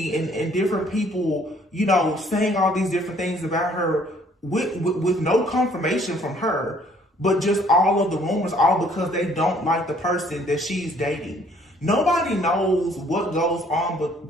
and different people, you know, saying all these different things about her with no confirmation from her, but just all of the rumors, all because they don't like the person that she's dating. Nobody knows what goes on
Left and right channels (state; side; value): normal; both; correlation 0.60